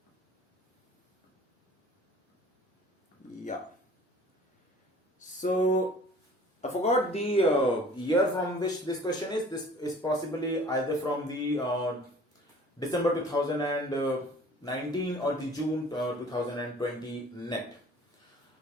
So I forgot the year from which this question is. This is possibly either from the December 2019 or the June 2020 net.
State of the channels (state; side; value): normal; both; correlation 0.49